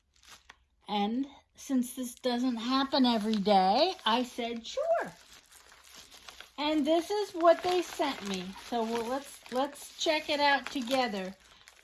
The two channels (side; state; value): both; identical; correlation 1.00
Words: And since this doesn't happen every day, I said, sure. And this is what they sent me. So let's check it out together.